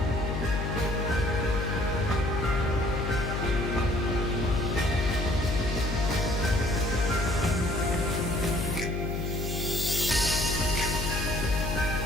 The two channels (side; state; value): left; noise; hum, 2 dB below the sound